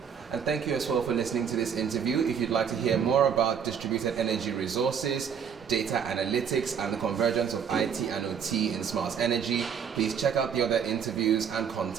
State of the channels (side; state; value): left; quieter; 7.4 dB